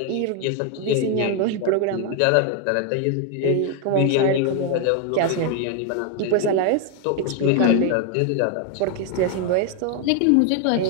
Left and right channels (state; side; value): different; both; correlation 0.01